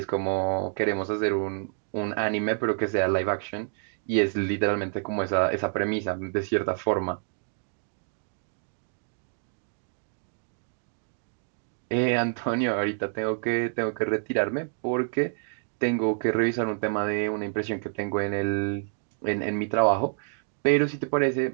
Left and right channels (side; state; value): left; silent; digital silence